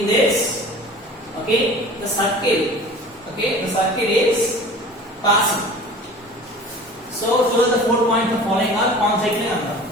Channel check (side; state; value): both; normal; correlation 0.41